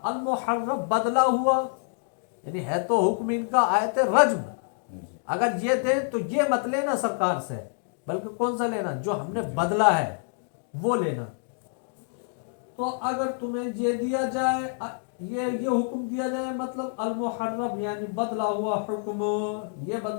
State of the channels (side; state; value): right; silent; 60 dB below the other